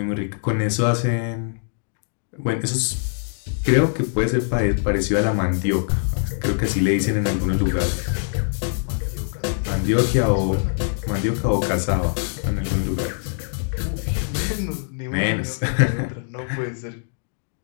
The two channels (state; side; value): silent; right; digital silence